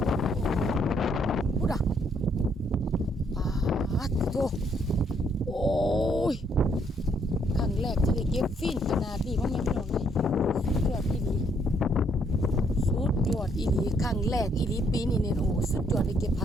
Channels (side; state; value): both; normal; correlation 0.70